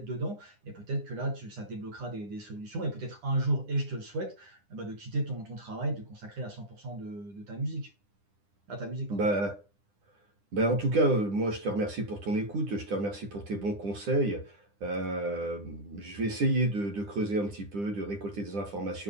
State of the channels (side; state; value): left; late; 9.9 ms